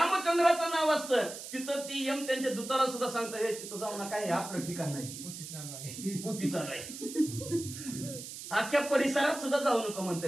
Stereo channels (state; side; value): noise; right; hiss, 10 dB below the sound